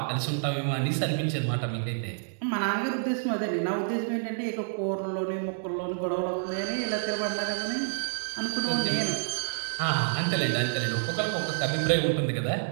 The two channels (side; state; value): left; silent; digital silence